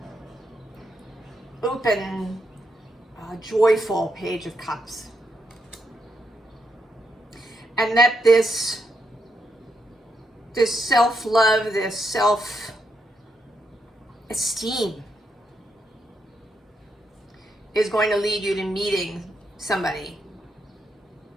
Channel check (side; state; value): both; normal; correlation 0.80